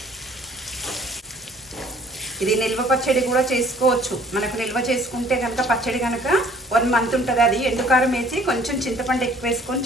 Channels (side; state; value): both; normal; correlation 0.56